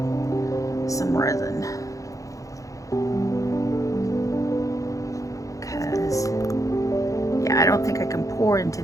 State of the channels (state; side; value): late; right; 0.16 ms